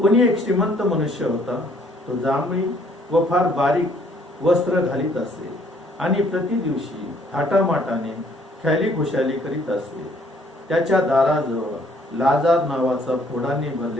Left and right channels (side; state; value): both; normal; correlation 0.63